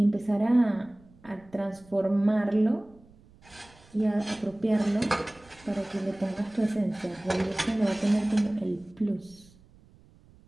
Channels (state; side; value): noise; right; rumble, 27 dB below the sound